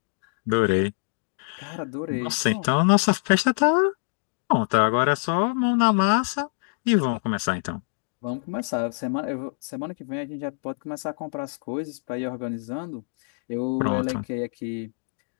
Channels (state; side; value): silent; right; digital silence